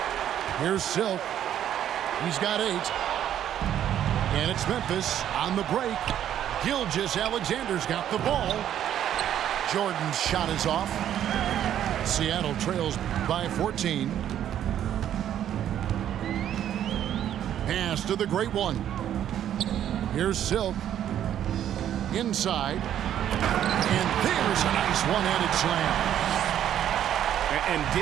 Here's Silk. He's got 8. And it's Memphis on the break. Gilgeous-Alexander's got the ball. Jordan's shot is off. Seattle trails by 14. Pass to the great one. Here's Silk. Inside. And there's a nice one-handed slam. And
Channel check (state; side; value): quieter; left; 10.6 dB